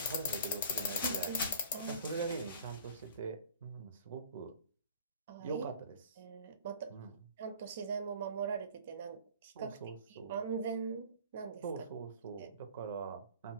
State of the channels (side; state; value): both; inverted; correlation -0.46